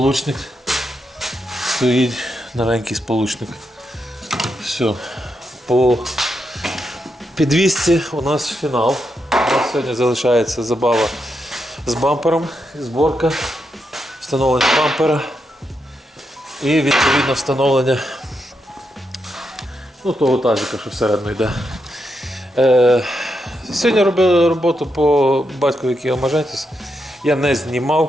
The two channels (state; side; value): normal; both; correlation 0.83